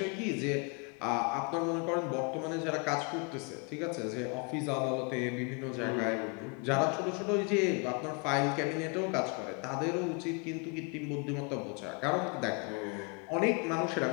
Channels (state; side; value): quieter; right; 33.2 dB